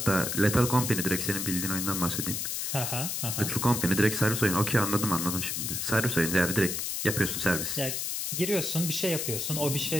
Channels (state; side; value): noise; left; hiss, 2 dB below the sound